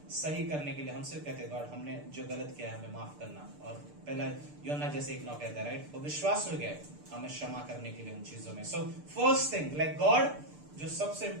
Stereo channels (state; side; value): late; left; 6.8 ms